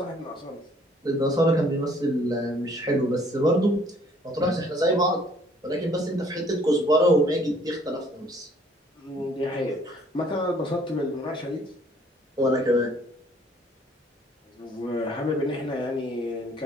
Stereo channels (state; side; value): normal; both; correlation 0.60